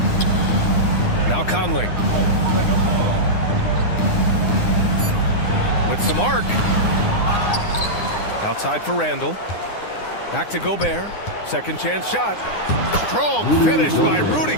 Now Conley. With some arc. Outside for Randle. Back to Gobert. Second chance shot. Strong finish by Rudy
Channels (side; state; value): right; late; 9.8 ms